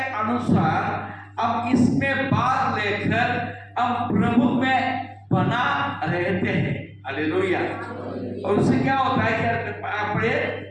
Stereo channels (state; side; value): identical; both; correlation 1.00